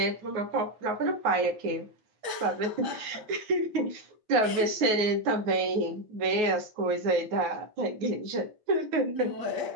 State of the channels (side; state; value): left; late; 9.4 ms